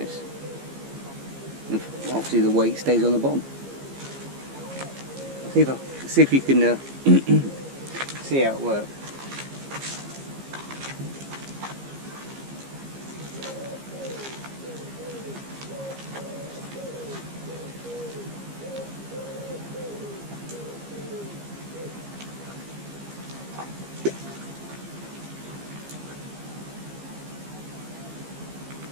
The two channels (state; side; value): late; left; 15 ms